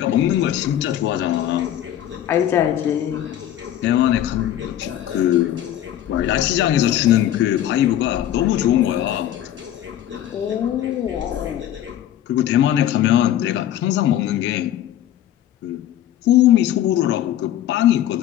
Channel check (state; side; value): quieter; right; 11.8 dB